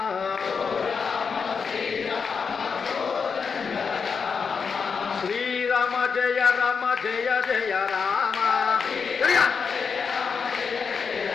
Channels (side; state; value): right; quieter; 5.8 dB